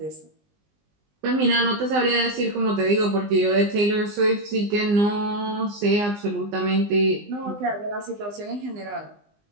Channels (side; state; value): left; late; 20 ms